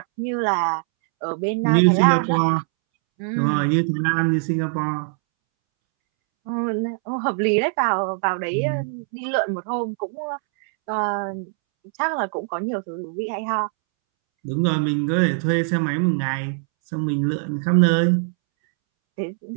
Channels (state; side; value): silent; left; 64 dB below the other